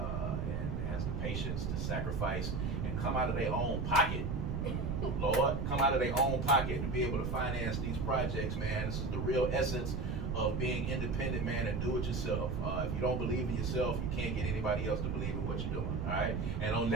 and has the patience to sacrifice and come out of their own pocket. Lord, come out of their own pocket to be able to finance these projects, man. This is the real essence of being independent, man, and do it yourself. If you don't believe in yourself, you can't get anybody else to believe in what you're doing, all right? And on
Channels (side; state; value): right; noise; rumble, 1 dB below the sound